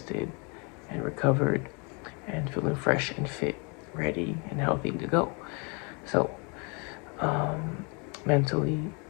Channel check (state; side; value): quieter; right; 32.7 dB